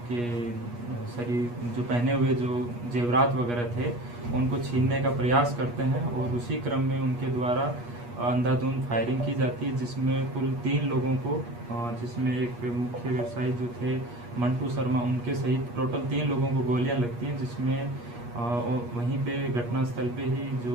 शरीर जो पहने हुए जो जेवरात वगैरह थे उनको छीनने का प्रयास करते हैं और उसी क्रम में उनके द्वारा अंधाधुंध फायरिंग की जाती है, जिसमें कुल 3 लोगों को जिसमें एक मुख्य व्यवसायी जो थे मंटू शर्मा उनके सहित टोटल 3 लोगों को गोलियां लगती हैं, जिसमें वहीं पे घटनास्थल पे ही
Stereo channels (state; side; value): late; left; 8.4 ms